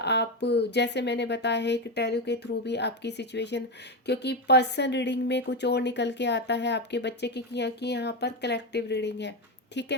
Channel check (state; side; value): normal; both; correlation 0.12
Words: जैसे मैंने बताया है कि टैरो के थ्रू भी आपकी सिचुएशन, क्योंकि पर्सन रीडिंग में कुछ और निकल के आता है आपके बच्चे की, कि यहाँ पर कलेक्टिव रीडिंग है, ठीक